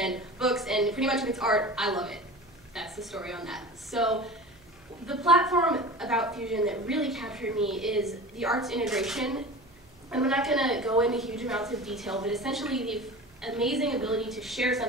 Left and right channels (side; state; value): right; noise; hum, 29 dB below the sound